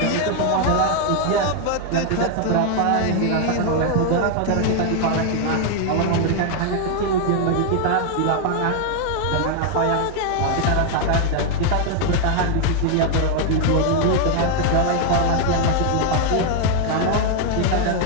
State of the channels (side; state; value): both; different; correlation 0.00